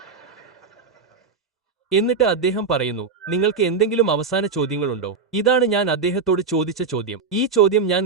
എന്നിട്ട് അദ്ദേഹം പറയുന്നു, നിങ്ങൾക്ക് എന്തെങ്കിലും അവസാന ചോദ്യങ്ങളുണ്ടോ? ഇതാണ് ഞാൻ അദ്ദേഹത്തോട് ചോദിച്ച ചോദ്യം. ഈ ചോദ്യം ഞാൻ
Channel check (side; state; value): left; quieter; 4.9 dB